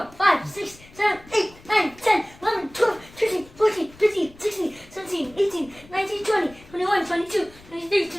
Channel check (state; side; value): noise; left; rumble, 23 dB below the sound